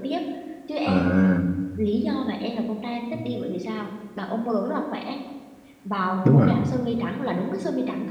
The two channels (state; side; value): identical; both; correlation 1.00